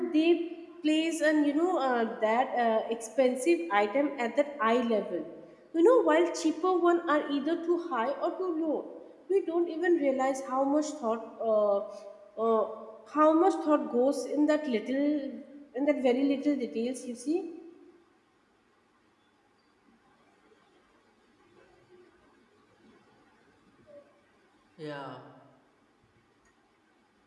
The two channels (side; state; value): both; identical; correlation 1.00